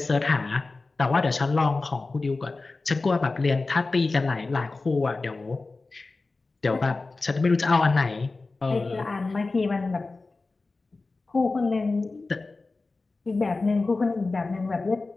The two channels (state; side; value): quieter; right; 3.6 dB